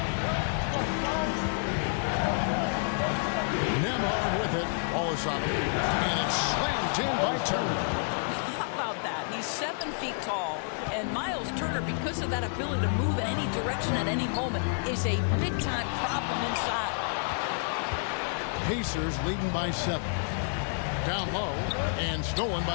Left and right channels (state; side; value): silent; right; 58 dB below the other